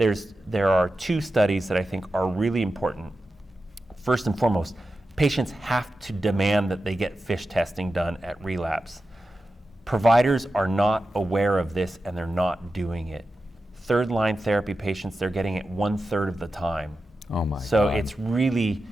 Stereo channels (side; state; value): both; normal; correlation 0.92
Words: are 2 studies that I think are really important. First and foremost, patients have to demand that they get FISH testing done at relapse. providers are not aware of this and they're not doing it. Third line therapy patients, they're getting it 1/3 of the time. Oh my So God.